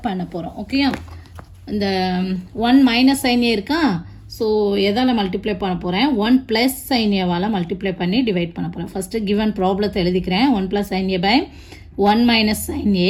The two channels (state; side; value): identical; both; correlation 1.00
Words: பண்ண போகிறோம். ஓகேயா, இந்த 1 - sin a இருக்கா, ஸோ எதால் மல்டிப்ளை பண்ண போகிறேன், 1 + sin a மல்டிப்ளை பண்ணி டிவைட் பண்ண போகிறேன். ஃபஸ்ட்டு கிவன் ப்ராப்ளத்தை எழுதிக்கிறேன். 1 + sin a by 1 - sin